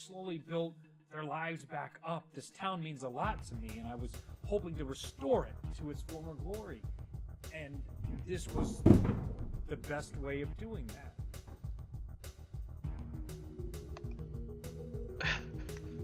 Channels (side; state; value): both; identical; correlation 1.00